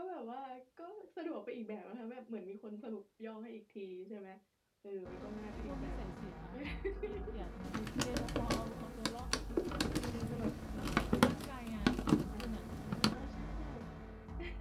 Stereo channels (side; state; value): both; identical; correlation 1.00